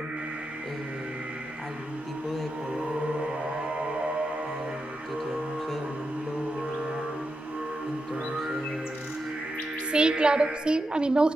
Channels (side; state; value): both; normal; correlation 0.87